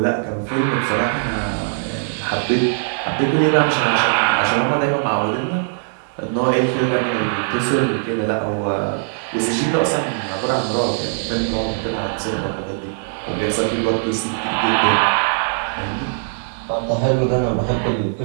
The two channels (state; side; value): silent; left; digital silence